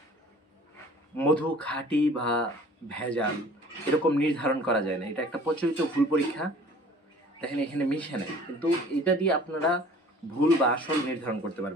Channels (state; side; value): normal; both; correlation 0.49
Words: মধু খাঁটি বা ভেজাল এরকম নির্ধারণ করা যায় না। এটা একটা প্রচলিত ভুল পরীক্ষা। দেখেন, এখানে মিশে নাই, কিন্তু এটা দিয়ে আপনারা ভুল বা আসল নির্ধারণ করতে